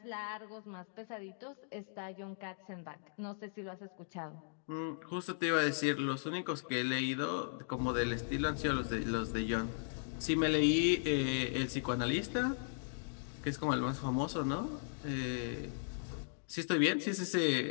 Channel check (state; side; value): silent; right; digital silence